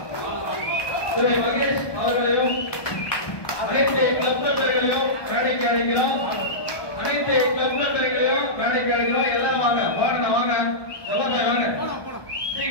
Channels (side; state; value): right; late; 1.2 ms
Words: திரு மகேஷ் அவர்களையும் அனைத்து கிளப் மெம்பர்களையும் மேடைக்கு அழைக்கிறோம். அனைத்து கிளப் மெம்பர்களையும் மேடைக்கு அழைக்கிறோம். எல்லாரும் வாங்க வாங்க வாங்க வாங்க